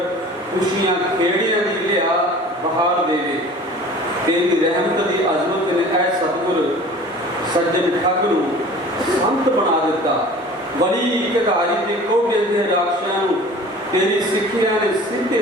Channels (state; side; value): normal; both; correlation 0.44